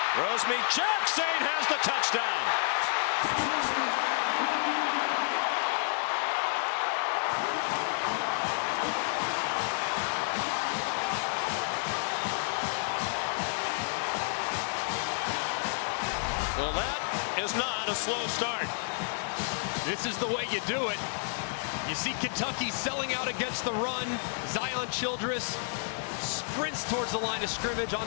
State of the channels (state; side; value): silent; right; digital silence